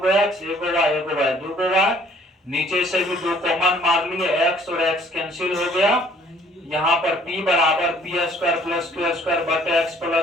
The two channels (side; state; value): both; normal; correlation 0.58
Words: एक्स, एगो वाई दो गो वाई, नीचे से भी दो कॉमन मार लिए, एक्स और एक्स कैंसिल हो गया। यहाँ पर p बराबर P square plus Q square बटे एक्स